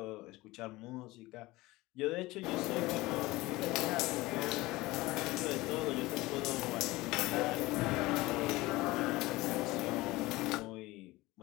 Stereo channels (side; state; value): right; quieter; 20.0 dB